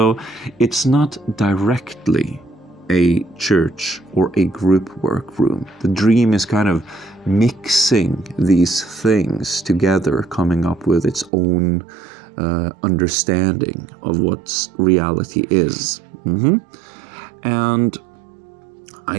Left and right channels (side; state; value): left; drops out; at 11.3 s